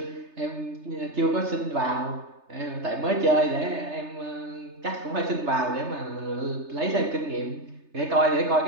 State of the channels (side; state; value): left; late; 3.3 ms